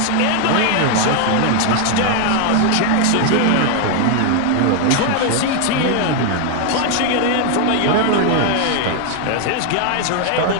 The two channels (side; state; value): both; different; correlation 0.01